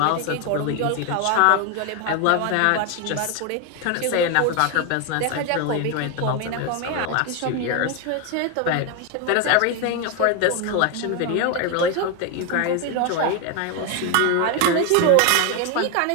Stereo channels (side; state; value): both; different; correlation 0.01